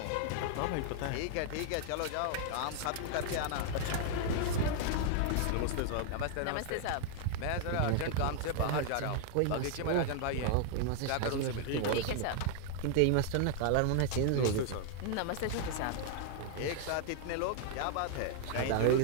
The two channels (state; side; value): different; both; correlation 0.00